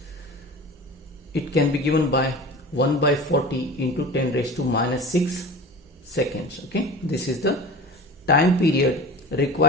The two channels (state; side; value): normal; both; correlation 0.36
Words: it can be given by 1 by 40 into 10 raised to minus 6 seconds. Okay, this is the time period